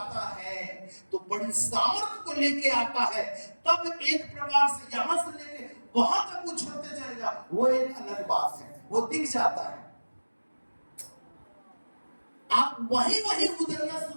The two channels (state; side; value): inverted; both; correlation -1.00